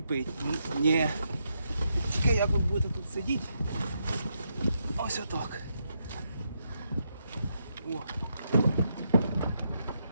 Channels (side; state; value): both; inverted; correlation -0.80